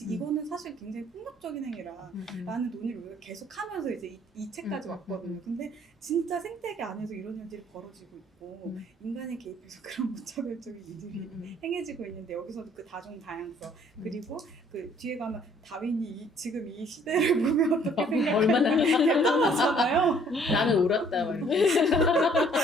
사실 굉장히 폭력적인 행위라 라는 논의를 우리가 계속 하면서 이제 이 책까지 왔거든요. 근데 진짜 생태계 안에서 이런 일들이 벌어지고 있고 인간이 개입해서 그런 무차별적인 일들이 행해지고 있는데 여기서도 그 다종 다양성 그리고 그 뒤에 가면 다윈이 지금 이 시대를 보면 어떻게 생각하냐 얼마나 대단하잖아요. 나는 울었다 막 이렇게.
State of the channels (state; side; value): normal; both; correlation 0.60